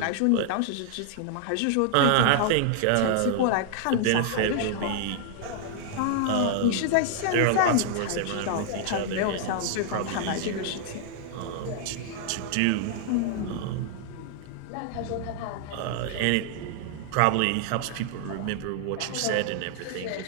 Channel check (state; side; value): different; both; correlation 0.00